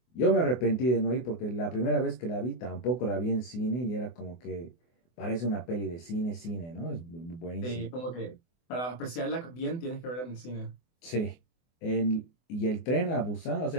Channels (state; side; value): late; right; 24 ms